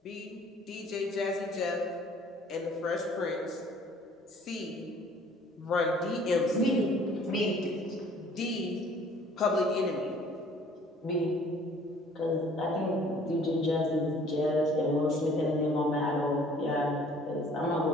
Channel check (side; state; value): both; normal; correlation 0.55